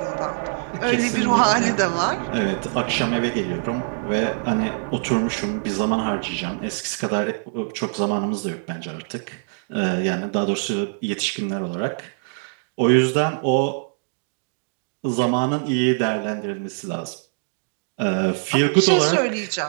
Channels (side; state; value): left; silent; digital silence